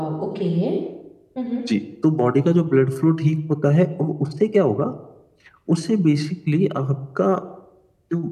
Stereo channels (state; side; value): identical; both; correlation 1.00